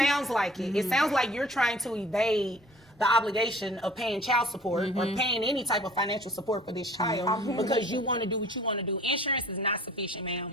like it. It sounds like you're trying to evade the obligation of paying child support or paying any type of financial support for this child because you want to do what you want to do. Insurance is not sufficient,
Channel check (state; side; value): normal; both; correlation 0.50